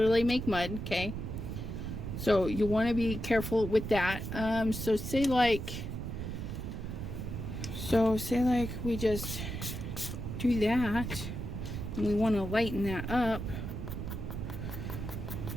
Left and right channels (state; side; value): noise; right; rumble, 5 dB below the sound